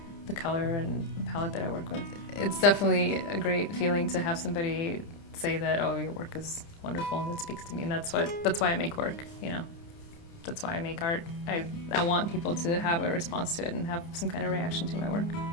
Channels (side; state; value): right; late; 29 ms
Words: the color and palette that I work with. It's definitely a great feeling to have somebody say that, oh, your work is wonderful and it speaks to me, and that's why I make work, That's why I make art. I want people to have a response to it and have some kind of reaction to my work.